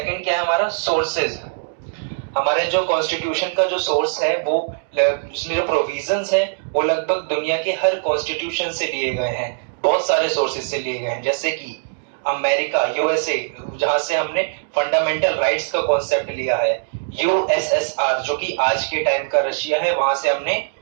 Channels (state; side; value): silent; left; digital silence